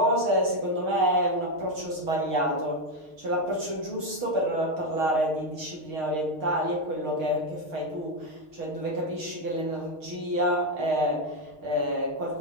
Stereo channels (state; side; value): late; left; 6.4 ms